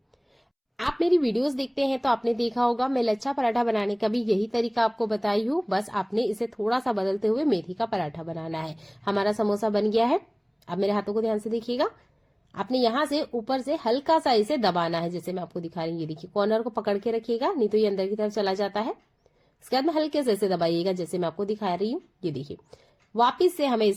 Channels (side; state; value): both; identical; correlation 1.00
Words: आप मेरी वीडियोस देखते हैं तो आपने देखा होगा, मैं लच्छा पराठा बनाने का भी यही तरीका आपको बताई हूँ। बस आपने इसे थोड़ा सा बदलते हुए मेथी का पराठा बनाना है। हमारा समोसा बन गया है। अब मेरे हाथों को ध्यान से देखिएगा। आपने यहां से ऊपर से हल्का सा इसे दबाना है, जैसे मैं आपको दिखा रही हूँ। ये देखिए, कॉर्नर को पकड़ के रखिएगा, नहीं तो ये अंदर की तरफ चला जाता है। इसके बाद में हल्के से इसे दबाइएगा, जैसे मैं आपको दिखा रही हूँ। ये देखिए, वापिस से हमें